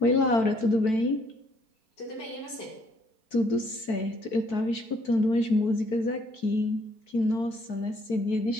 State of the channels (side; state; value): right; late; 4.6 ms